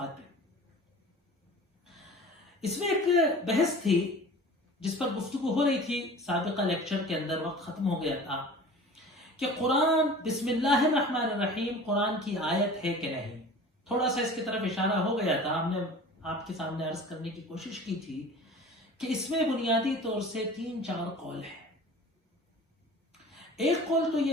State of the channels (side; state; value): both; normal; correlation 0.41